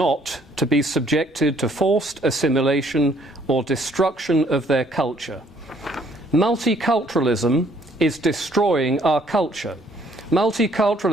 to be subjected to forced assimilation or destruction of their culture. Multiculturalism is destroying our culture.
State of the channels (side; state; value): both; normal; correlation 0.63